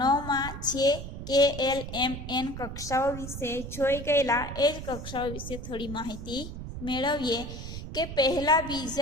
9માં છે KLMN કક્ષાઓ વિશે જોઈ ગયેલા. એ જ કક્ષાઓ વિશે થોડી માહિતી મેળવીએ કે પહેલા,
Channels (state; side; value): noise; right; rumble, 9 dB below the sound